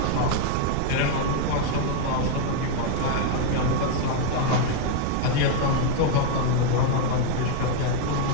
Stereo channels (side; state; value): both; different; correlation 0.00